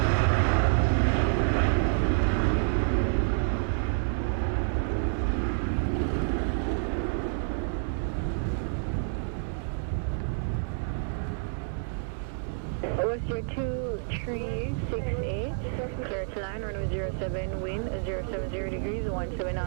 WestJet 2368, clear to line, runway 07, wind 070 degrees, 17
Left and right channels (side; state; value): left; silent; digital silence